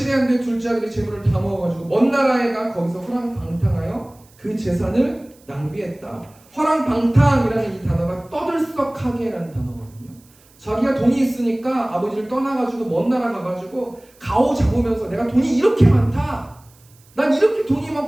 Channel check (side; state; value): right; noise; hiss, 29 dB below the sound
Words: 안 돼 둘째 아들이 재물을 다 모아가지고 먼 나라에 가 거기서 허랑방탕하여 그 재산을 낭비했다. 허랑방탕이라는 이 단어가 떠들썩하게라는 단어거든요. 자기가 돈이 있으니까 아버지를 떠나가지고 먼 나라 가가지고 가오 잡으면서 내가 돈이 이렇게 많다, 난 이렇게 돈이